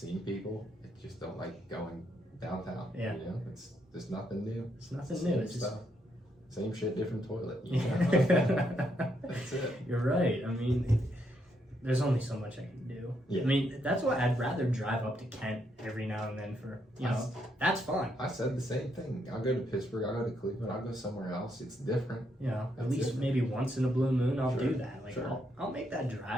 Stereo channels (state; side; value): normal; both; correlation 0.76